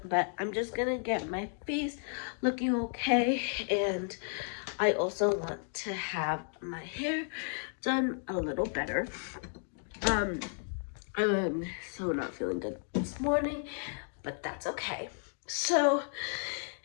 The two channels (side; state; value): right; silent; 55 dB below the other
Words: but I'm just gonna get my face looking okay, and I also want to have my hair done a little better. I'm so not feeling good this morning, but that's okay. So